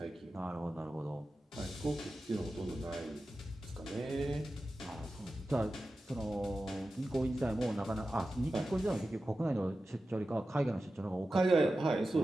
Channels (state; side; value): normal; both; correlation 0.93